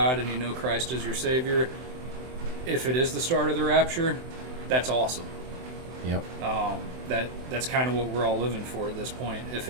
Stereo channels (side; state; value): left; late; 23 ms